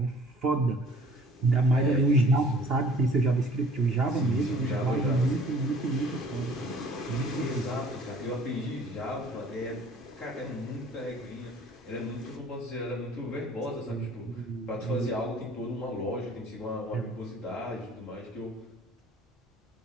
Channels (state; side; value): normal; both; correlation 0.52